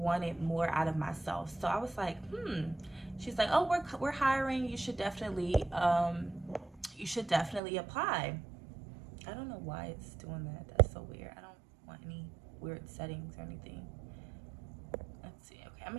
more out of myself. So I was like, She's like, oh, we're hiring. You should definitely apply. I don't know why it's doing that. That's so weird. I don't want any weird settings or anything. Let's see. Okay, I'm gonna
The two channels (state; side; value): drops out; left; at 7.6 s